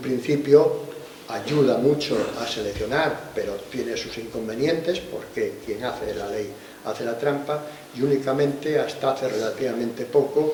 ayuda mucho a seleccionar, pero tiene sus inconvenientes, porque quien hace la ley hace la trampa, y únicamente hasta hace relativamente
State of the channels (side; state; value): both; identical; correlation 1.00